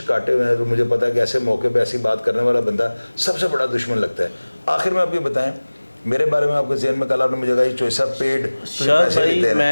کاٹے ہوئے ہیں, تو مجھے پتا ہے کہ ایسے موقع پہ ایسی بات کرنے والا بندہ سب سے بڑا دشمن لگتا ہے. آخر میں آپ یہ بتائیں میرے بارے میں, آپ کے ذہن میں کل آپ نے مجھے کہا یہ چوائسا پیڈ پیسے لیتے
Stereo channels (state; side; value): inverted; both; correlation -1.00